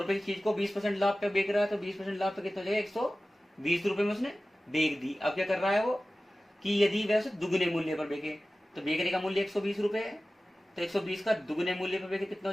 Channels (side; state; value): both; normal; correlation 0.96